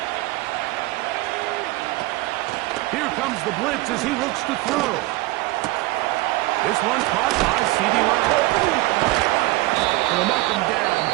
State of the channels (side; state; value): left; quieter; 19.8 dB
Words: Here comes the blitz as he looks to throw. This one caught by C.D. Lamb. And they'll mark him down